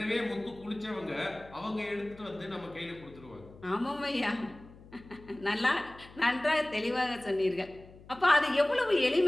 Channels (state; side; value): noise; left; hum, 21 dB below the sound